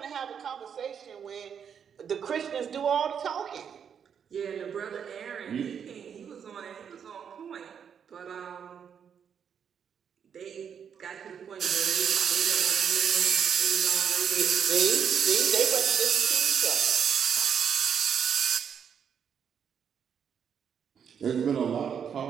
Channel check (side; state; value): left; quieter; 7.6 dB